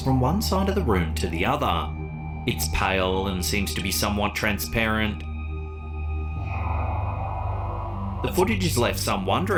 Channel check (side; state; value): both; identical; correlation 1.00